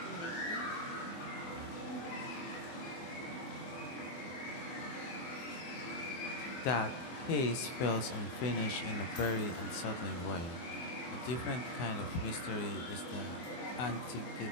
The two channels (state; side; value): late; right; 24 ms